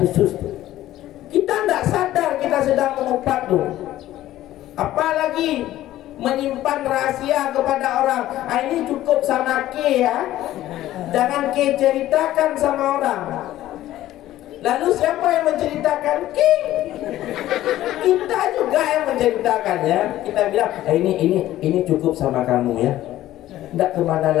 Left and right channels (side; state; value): right; quieter; 14.2 dB